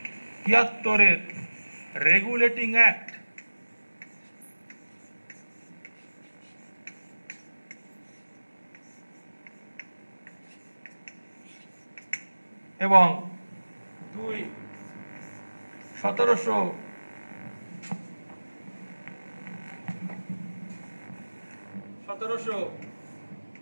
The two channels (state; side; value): inverted; both; correlation -1.00